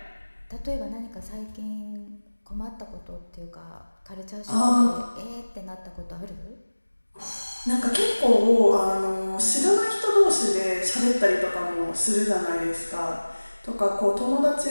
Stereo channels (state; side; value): inverted; both; correlation -1.00